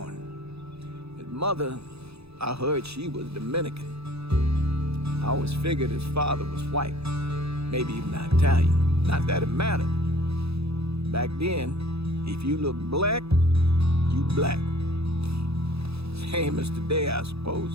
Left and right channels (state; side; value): late; left; 0.78 ms